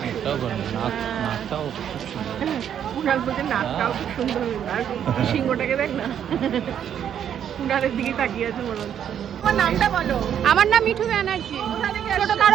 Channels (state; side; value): quieter; left; 9.2 dB